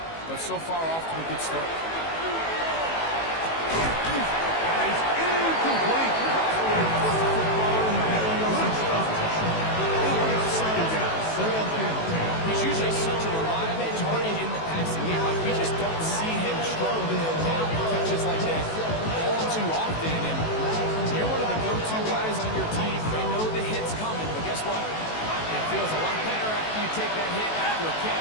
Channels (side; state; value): right; late; 18 ms